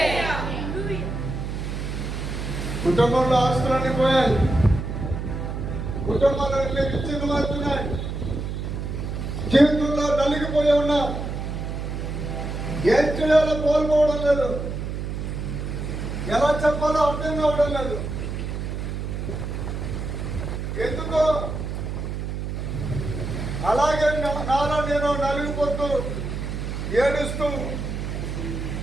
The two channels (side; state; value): right; noise; hum, 4 dB below the sound